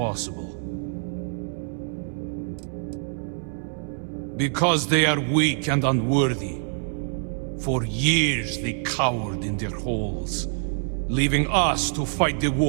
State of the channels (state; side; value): silent; left; 61 dB below the other